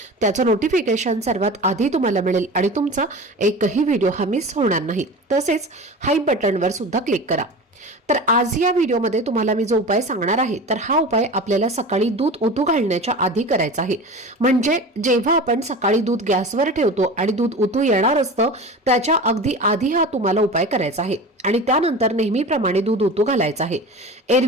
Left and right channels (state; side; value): normal; both; correlation 0.33